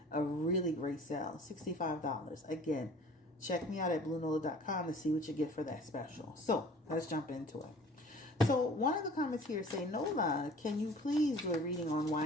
a really great sale, $65. Again, check me out at BlueNola.com to see what you get for that special. So, let's jump into it. So, one of the comments here say, Nola, can you please do a reading on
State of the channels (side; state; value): both; normal; correlation 0.48